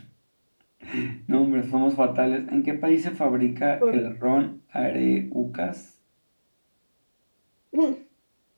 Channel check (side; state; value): both; inverted; correlation -1.00